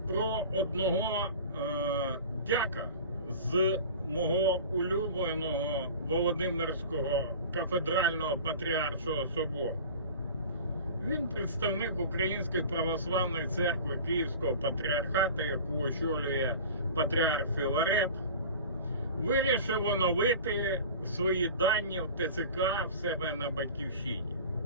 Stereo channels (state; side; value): inverted; both; correlation -0.37